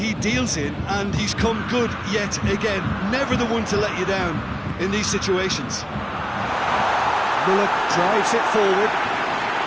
deals in, and he's come good yet again. Never the one to let you down in these situations. Müller drives it forward.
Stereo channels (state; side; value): identical; both; correlation 1.00